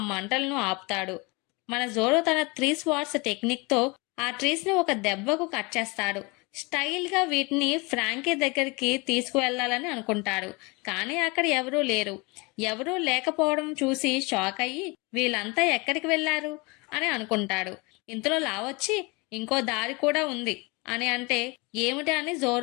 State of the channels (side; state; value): right; quieter; 27.1 dB